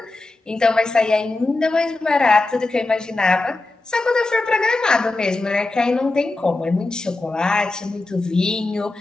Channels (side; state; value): right; quieter; 3.1 dB